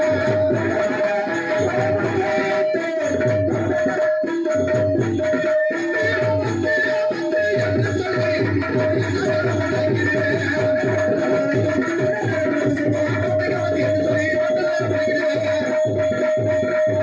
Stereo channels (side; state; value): both; identical; correlation 1.00